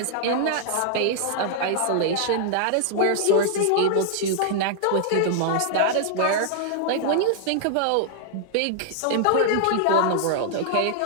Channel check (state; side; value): different; both; correlation -0.01